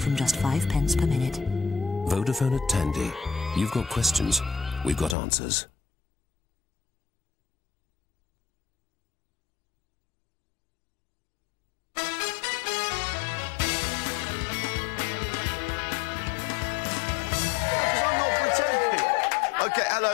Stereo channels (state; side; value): drops out; right; at 5.2 s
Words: just 5 pence per minute. Vodafone at Tandy. You've got questions, we've got answers. OK,